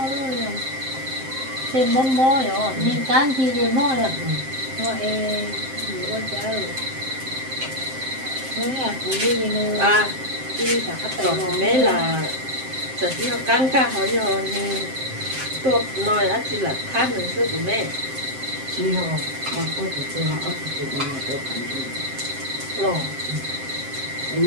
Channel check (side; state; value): left; late; 7.7 ms